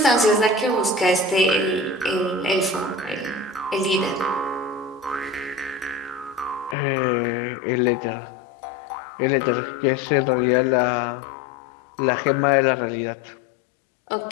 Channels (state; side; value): drops out; right; at 6.8 s